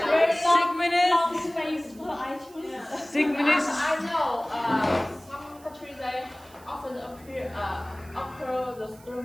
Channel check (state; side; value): noise; right; hiss, 25 dB below the sound